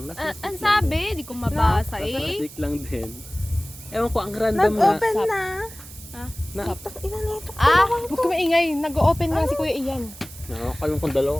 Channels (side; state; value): right; noise; hiss, 17 dB below the sound